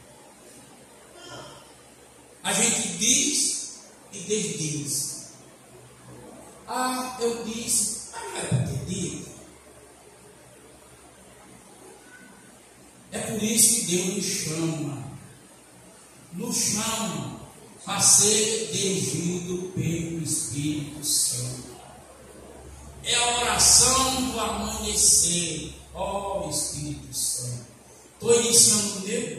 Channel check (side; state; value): both; identical; correlation 1.00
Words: A gente diz e desdiz. Ah, eu disse, mas não era para ter dito. É por isso que Deus nos chama a ser dirigido pelo Espírito Santo. É a oração do amanhecer, ó Espírito Santo. Estou iniciando o